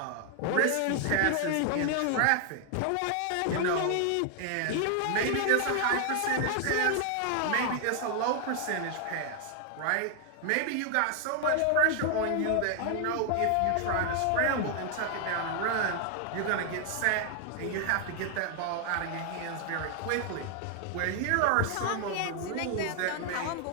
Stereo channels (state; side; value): different; both; correlation 0.00